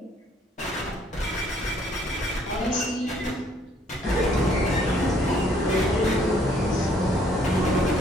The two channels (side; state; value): both; normal; correlation 0.64